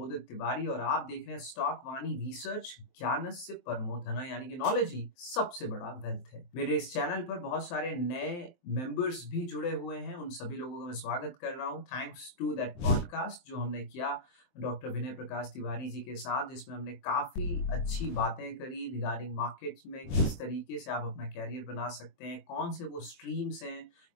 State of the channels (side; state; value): right; late; 23 ms